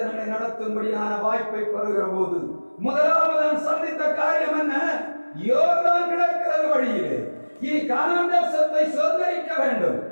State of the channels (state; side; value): inverted; both; correlation -1.00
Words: நடத்தும்படியான வாய்ப்பை பெறுகிற போது முதலாவது சந்தித்த காரியம் என்ன? யோர்தான் கிடக்கிறது வழியிலே. இனி கானான் தேசத்தை சுதந்திரிக்க வேண்டும்.